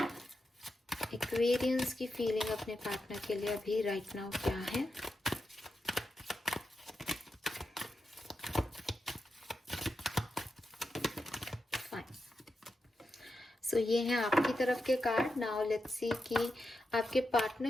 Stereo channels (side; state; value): both; normal; correlation 0.88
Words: Aquarians की फीलिंग अपने पार्टनर के लिए अभी राइट नाउ क्या है? फाइन। ये हैं आपकी तरफ के कार्ड। नाउ लेट्स सी कि आपके